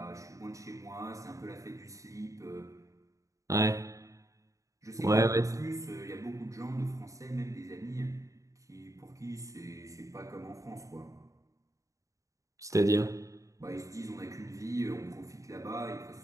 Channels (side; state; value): left; late; 0.16 ms